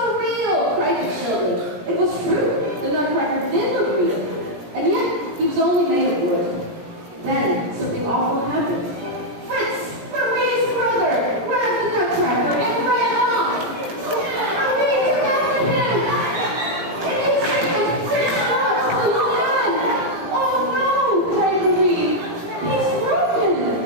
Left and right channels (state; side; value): late; left; 17 ms